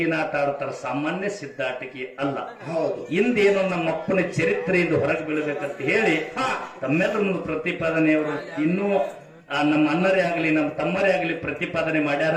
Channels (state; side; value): identical; both; correlation 1.00